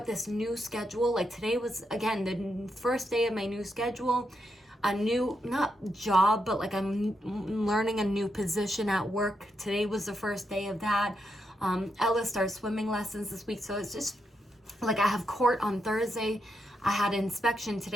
this new schedule. Like today was, again, the first day of my new schedule. A new, not job, but like I'm learning a new position at work. Today was the first day of that. Ella starts swimming lessons this week, so it's just like I have court on Thursday. I had inspection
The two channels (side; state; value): both; normal; correlation 0.82